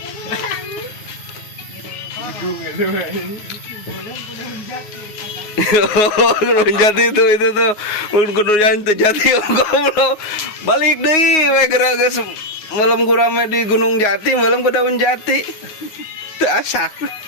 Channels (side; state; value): right; late; 9.5 ms